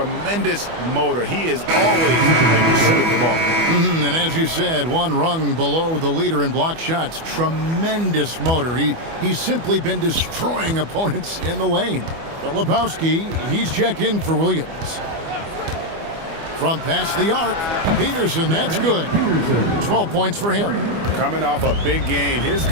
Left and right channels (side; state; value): left; late; 25 ms